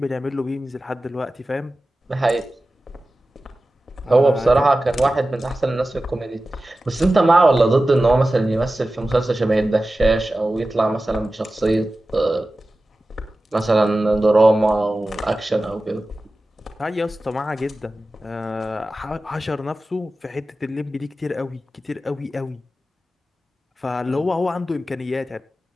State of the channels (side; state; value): both; normal; correlation 0.95